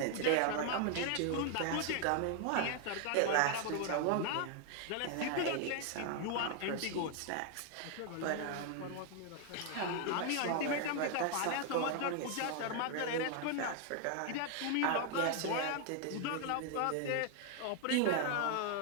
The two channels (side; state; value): both; different; correlation 0.00